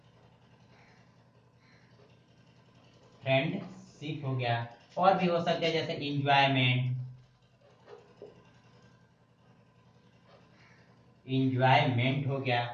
फ्रेंडशिप हो गया, और भी हो सकते हैं जैसे इंजॉयमेंट, इंजॉयमेंट हो गया।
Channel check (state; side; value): identical; both; correlation 1.00